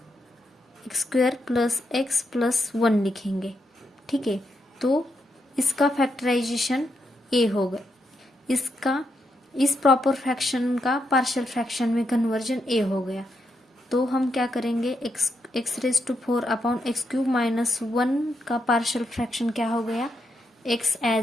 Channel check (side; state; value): both; normal; correlation 0.82